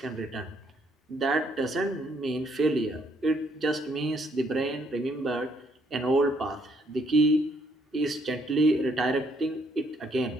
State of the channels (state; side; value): normal; both; correlation 0.69